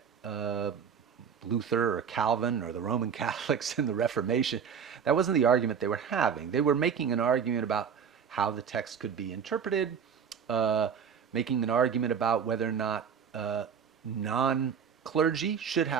Luther or Calvin or the Roman Catholics in the Reformation, that wasn't the argument they were having. They were making an argument about how the text could be interpreted, making an argument about whether or not non-clergy should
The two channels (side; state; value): left; quieter; 7.1 dB